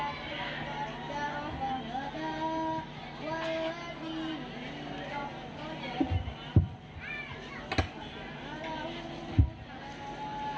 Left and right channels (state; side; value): identical; both; correlation 1.00